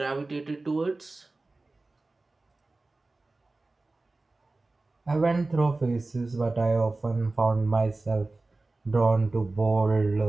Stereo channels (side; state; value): left; quieter; 3.2 dB